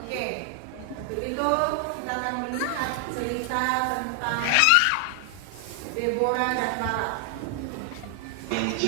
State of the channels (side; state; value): both; different; correlation 0.00